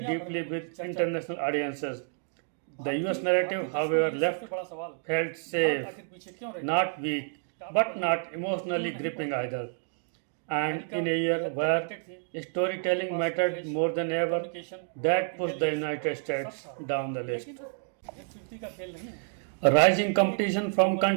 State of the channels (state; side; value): silent; left; 58 dB below the other